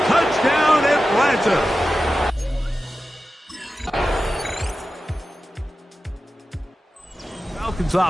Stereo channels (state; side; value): normal; both; correlation 0.93